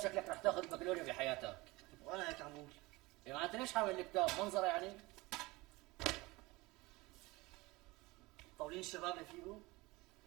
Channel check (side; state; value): left; quieter; 22.1 dB